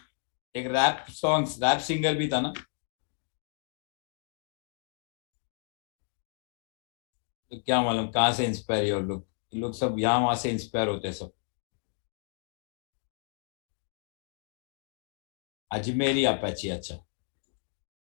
एक रैप सिंगर भी था ना, तो क्या मालूम कहाँ से इंस्पायर है, और लोग सब यहाँ वहां से इंस्पायर होते हैं सब। अजमेरी अपैची, अच्छा।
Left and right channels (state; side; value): silent; right; digital silence